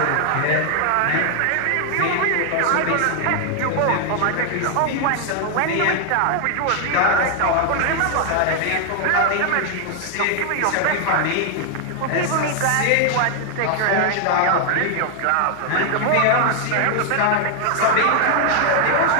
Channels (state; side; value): different; both; correlation 0.00